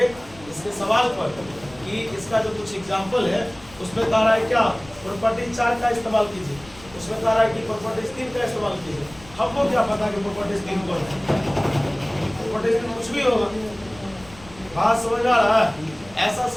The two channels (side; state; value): left; noise; rumble, 22 dB below the sound